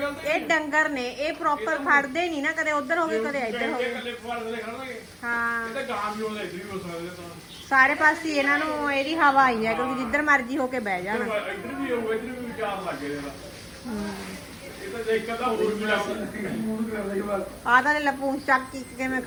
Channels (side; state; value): both; identical; correlation 1.00